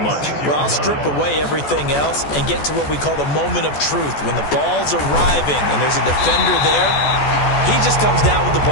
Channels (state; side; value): late; right; 14 ms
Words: Well, I'll strip away everything else and get to what we call the moment of truth. When the ball's arriving and there's a defender there, he just comes down with the